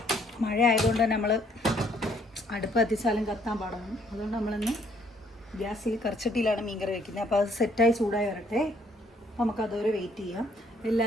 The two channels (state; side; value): normal; both; correlation 0.65